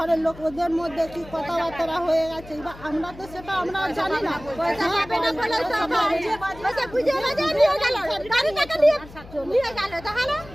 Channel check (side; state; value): left; noise; hum, 18 dB below the sound